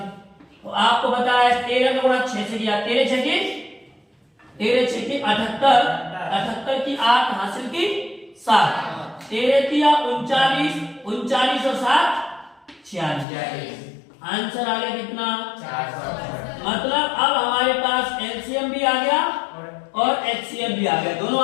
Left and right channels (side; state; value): right; drops out; at 13.2 s